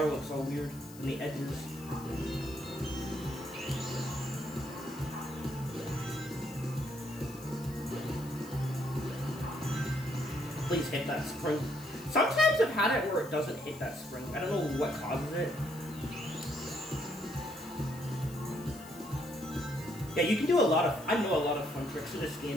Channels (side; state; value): left; noise; hiss, 19 dB below the sound